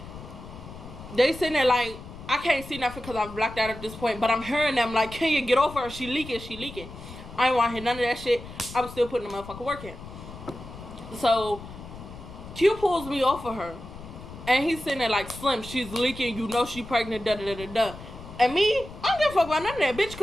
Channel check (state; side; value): noise; left; rumble, 14 dB below the sound